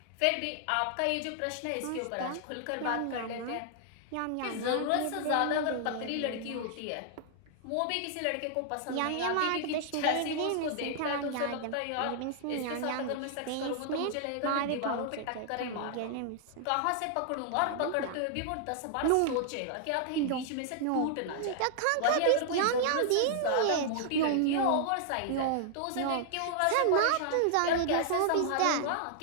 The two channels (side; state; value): both; different; correlation -0.01